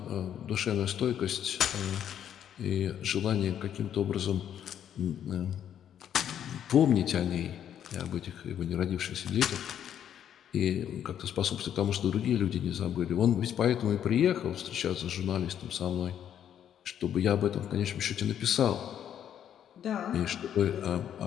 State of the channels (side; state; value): right; quieter; 9.7 dB